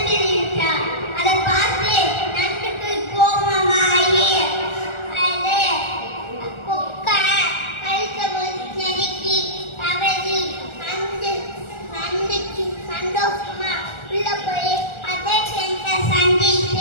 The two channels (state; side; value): late; right; 1.4 ms